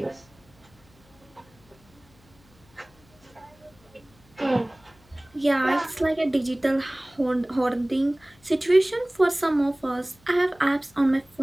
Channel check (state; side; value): noise; left; hum, 29 dB below the sound